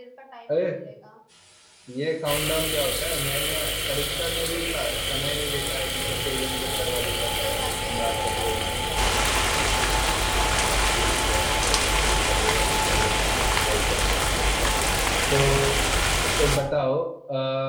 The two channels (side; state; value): both; identical; correlation 1.00